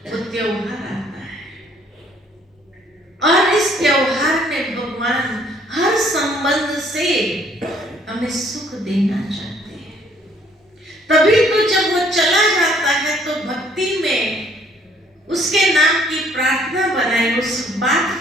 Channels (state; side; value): normal; both; correlation 0.62